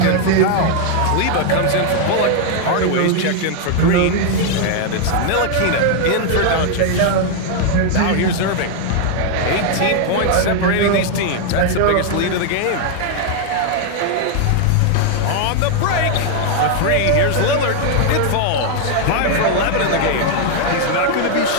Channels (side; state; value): both; different; correlation 0.00